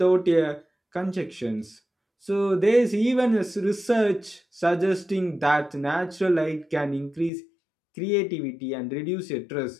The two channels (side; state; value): right; drops out; at 7.3 s